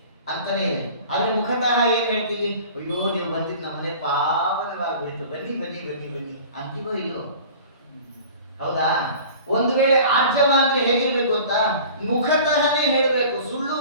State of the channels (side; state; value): both; inverted; correlation -0.43